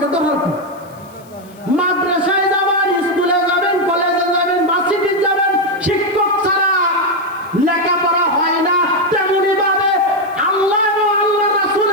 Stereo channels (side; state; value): left; noise; hiss, 27 dB below the sound